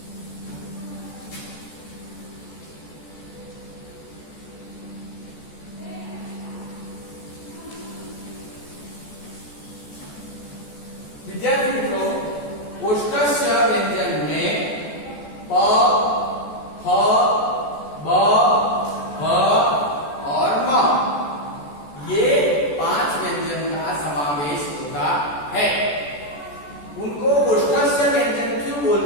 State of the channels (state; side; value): late; right; 14 ms